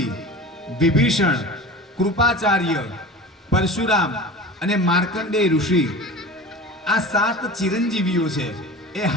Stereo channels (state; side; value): normal; both; correlation 0.35